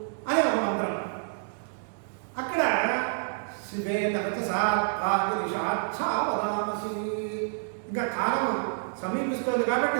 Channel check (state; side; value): silent; left; digital silence